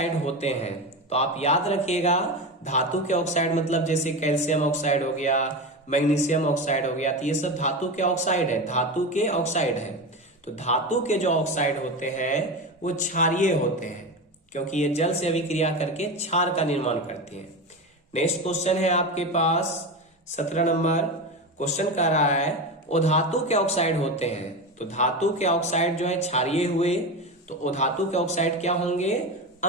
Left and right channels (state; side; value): normal; both; correlation 0.22